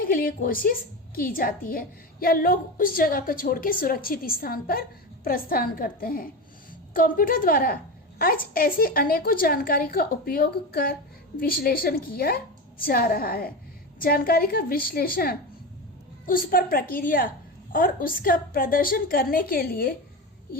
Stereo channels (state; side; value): normal; both; correlation 0.22